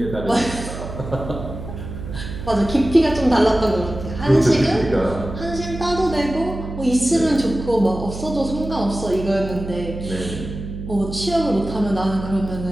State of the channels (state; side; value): noise; right; hum, 9 dB below the sound